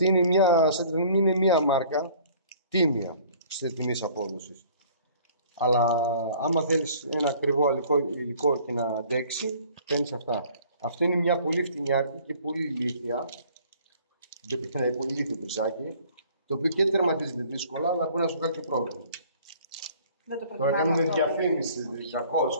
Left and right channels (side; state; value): both; inverted; correlation -0.53